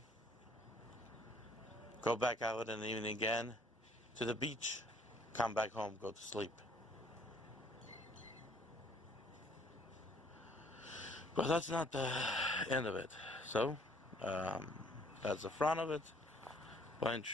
go back out in the evening again to the beach, come back home, go to sleep. But that's not the end of it. So that's the front of it. Pine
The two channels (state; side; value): normal; both; correlation 0.61